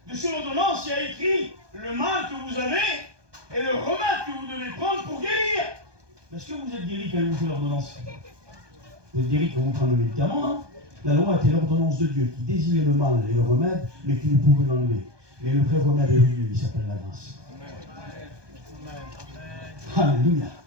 sur l'ordonnance, il y a écrit le mal que vous avez et le remède que vous devez prendre pour guérir. Est-ce que vous êtes guéri quand il vous fait l'ordonnance? Vous êtes guéri quand vous prenez le médicament, hein? La loi était l'ordonnance de Dieu qui désignait le mal et le remède, mais qui ne pouvait l'enlever. Mais le vrai remède est venu, il s'appelle la grâce. Alléluia.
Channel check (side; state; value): left; late; 1.2 ms